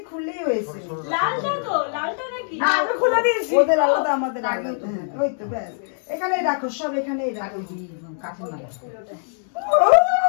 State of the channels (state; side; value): silent; right; digital silence